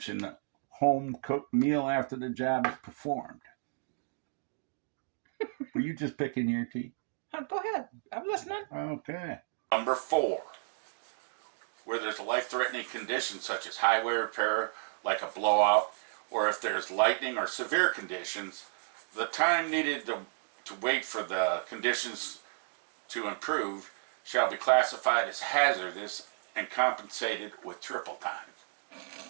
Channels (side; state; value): left; silent; digital silence